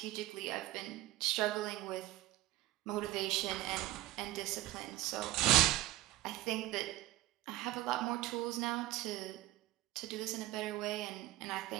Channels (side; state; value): left; quieter; 16.2 dB